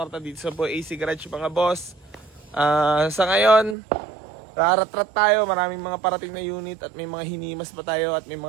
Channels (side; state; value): left; drops out; at 3.8 s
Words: dito sa Boy AC Garage mga boss. Sa ngayon, raratrat tayo, maraming mga parating na unit at may mga hinimas pa tayo at may